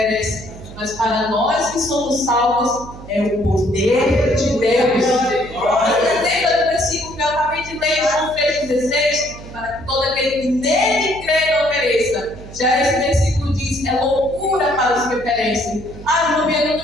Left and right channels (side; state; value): right; noise; hum, 15 dB below the sound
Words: mas para nós que somos salvos é o poder de Deus. Lembra do versículo que eu acabei de ler em João 3,16? Para que todo aquele que nele crê não pereça. Já esse versículo diz: é loucura para os que perecem. Irmão, eu não